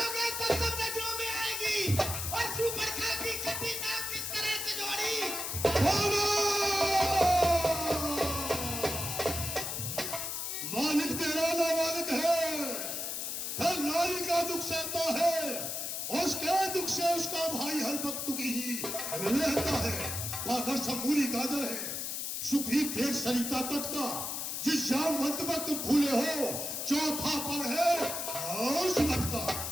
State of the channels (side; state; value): left; noise; hiss, 3 dB below the sound